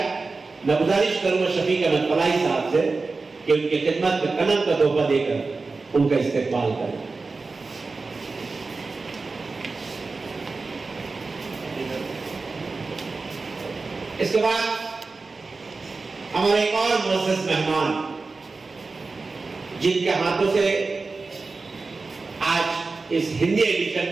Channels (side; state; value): left; quieter; 3.9 dB